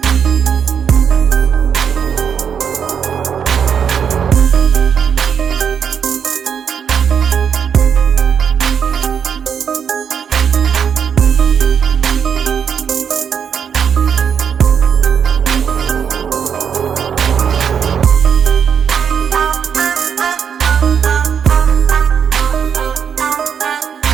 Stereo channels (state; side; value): quieter; left; 7.5 dB